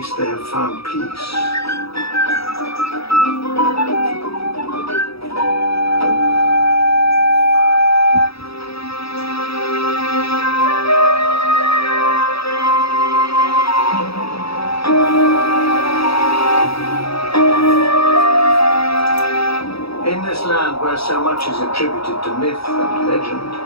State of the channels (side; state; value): right; late; 0.77 ms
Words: they have found peace. where so much is attributed to myth and legend,